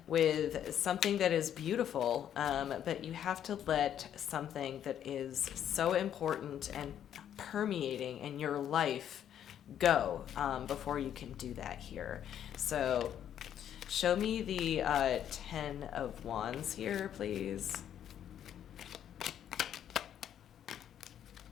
with something that is beautiful, but you have to let something that is so important and permeating in your life go before you can do that here. So show me the Ten of Wands here, please.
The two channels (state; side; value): quieter; right; 10.0 dB